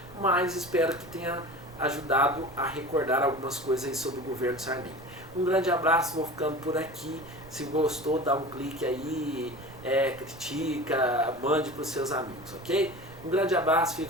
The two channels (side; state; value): right; noise; rumble, 19 dB below the sound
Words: mas espero que tenha ajudado a recordar algumas coisas aí sobre o governo Sarney. Um grande abraço, vou ficando por aqui. Se gostou, dá um clique aí, critica, mande para os seus amigos, ok? Um grande abraço,